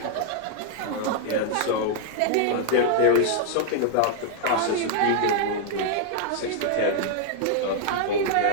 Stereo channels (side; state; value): both; different; correlation -0.01